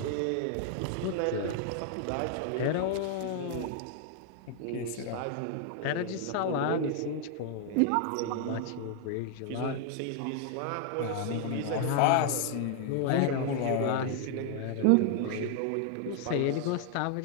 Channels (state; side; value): different; both; correlation 0.00